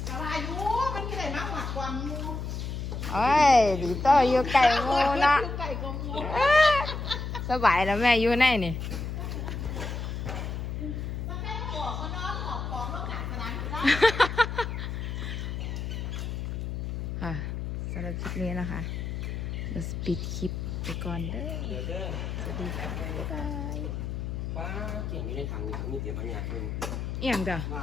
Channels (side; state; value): left; noise; hum, 4 dB below the sound